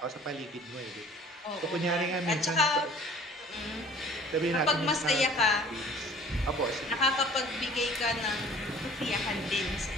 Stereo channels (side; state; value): both; normal; correlation 0.50